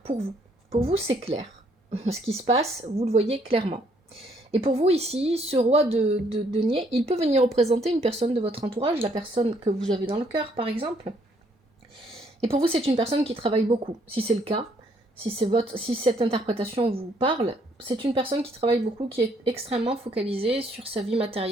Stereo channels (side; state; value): both; normal; correlation 0.67